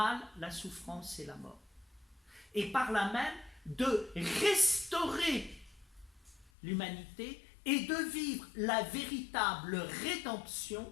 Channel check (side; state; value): right; drops out; at 6.5 s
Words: la souffrance et la mort. Et par là même, de restaurer l'humanité et de vivre la véritable rédemption.